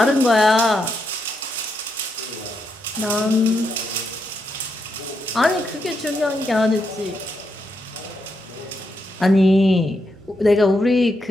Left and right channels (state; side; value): normal; both; correlation 0.82